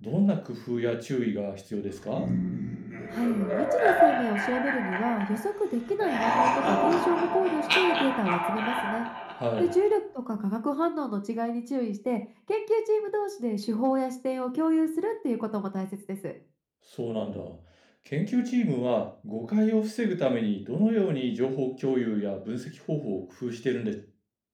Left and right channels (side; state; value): both; identical; correlation 1.00